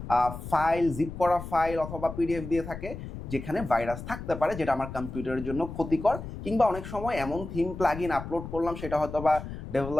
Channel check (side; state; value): left; noise; rumble, 10 dB below the sound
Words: ফাইল, জিপ করা ফাইল অথবা পিডিএফ দিয়ে থাকে যেখানে ভাইরাস থাকতে পারে, যেটা আমার কম্পিউটারের জন্য ক্ষতিকর। কিংবা অনেক সময় এমন থিম প্লাগইন আপলোড করলাম সেটা হয়তো বা